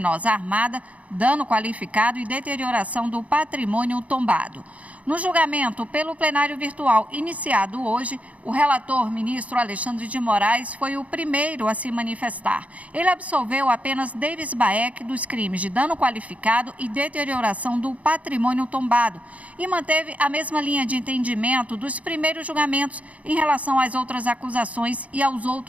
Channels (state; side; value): late; left; 0.067 ms